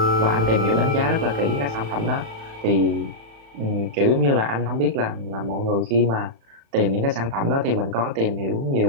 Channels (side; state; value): left; late; 36 ms